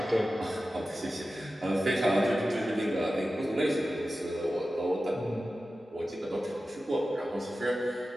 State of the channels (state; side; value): normal; both; correlation 0.94